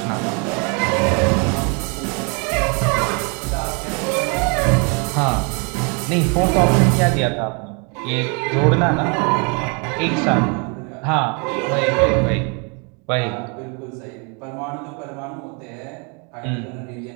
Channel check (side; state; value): left; quieter; 34.4 dB